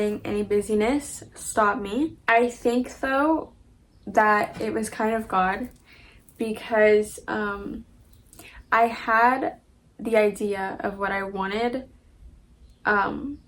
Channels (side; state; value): both; identical; correlation 1.00